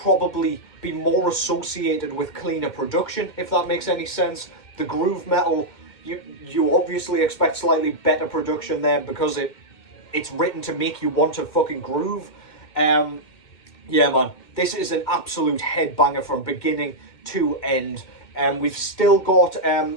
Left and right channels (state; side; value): late; right; 2.1 ms